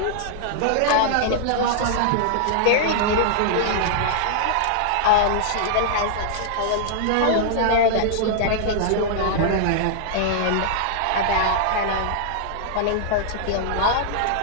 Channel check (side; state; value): both; different; correlation -0.01